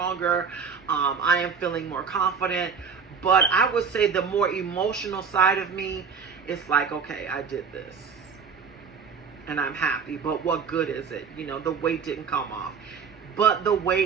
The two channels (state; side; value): quieter; left; 6.0 dB